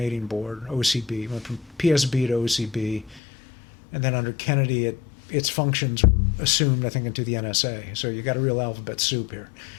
Board, OCB. It went from PSB to OCB, and then under Kennedy, its functions were assumed, I think, into the NSA. So you got a real alphabet soup here.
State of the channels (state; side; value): drops out; right; at 3.2 s